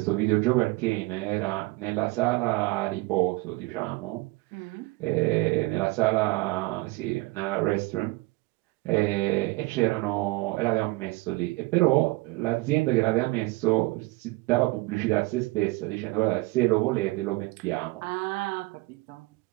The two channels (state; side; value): quieter; left; 23.0 dB